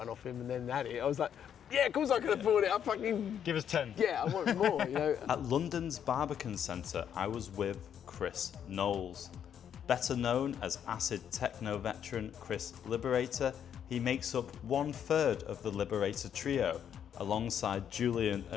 off him and then had it, I was like, "Yeah, of course I can afford it. I fucking give us 10." Yeah, I want more. You know. At London's Barbican Centre, I was with Chris Knowles, better known as acid techno veteran Chris Liberator. He makes up 1/3 of the Liberator trio, alongside Julian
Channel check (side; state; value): right; quieter; 8.9 dB